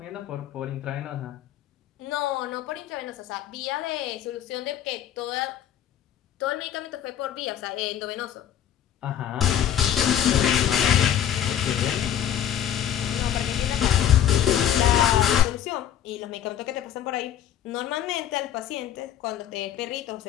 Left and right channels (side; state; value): right; quieter; 10.3 dB